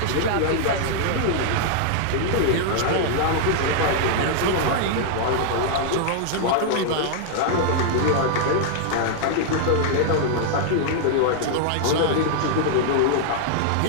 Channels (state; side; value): different; both; correlation -0.01